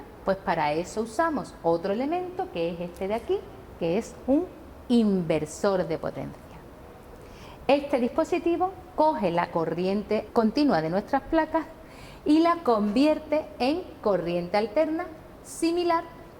Pues para eso usamos otro elemento, que es este de aquí, que es un inversor de potencia. Este dispositivo coge la corriente continua de nuestras placas y la convierte en corriente alterna similar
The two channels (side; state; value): both; identical; correlation 1.00